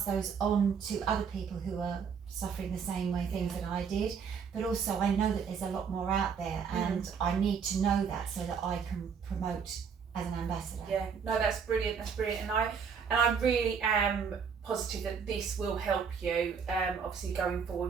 those on to other people who are suffering the same way things that I did. But also I know that there's a lot more out there, and I need to know that so that I can promote as an ambassador. Yeah, no, that's brilliant, and I really am positive that this will help you obviously going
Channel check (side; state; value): left; quieter; 6.4 dB